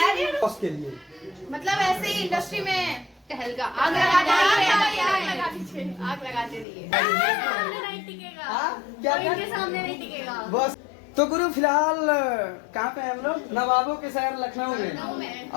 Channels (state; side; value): drops out; right; at 6.7 s